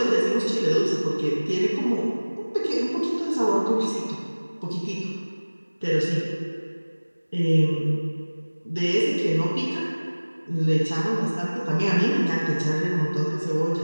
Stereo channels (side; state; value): both; inverted; correlation -1.00